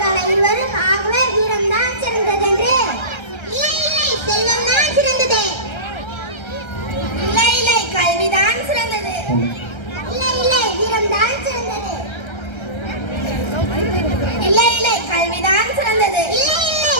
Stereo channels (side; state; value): right; late; 1.3 ms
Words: இருவரும். ஆகவே வீரம் தான் சிறந்தது என்று. இல்லை இல்லை, செல்வம் தான் சிறந்தது. இல்லை இல்லை, கல்விதான் சிறந்தது. இல்லை இல்லை, வீரம் தான் சிறந்தது. இல்லை இல்லை, கல்விதான் சிறந்தது. இல்லை இல்லை,